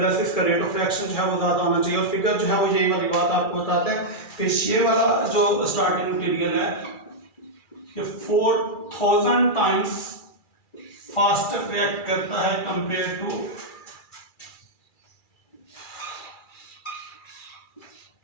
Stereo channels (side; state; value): right; late; 2.3 ms